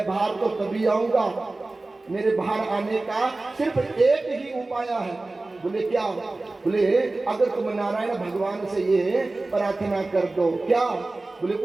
बाहर तो तभी आऊंगा, मेरे बाहर आने का सिर्फ एक ही उपाय है। बोले क्या? बोले अगर तुम नारायण भगवान से ये प्रार्थना कर दो। क्या? बोले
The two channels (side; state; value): left; quieter; 3.2 dB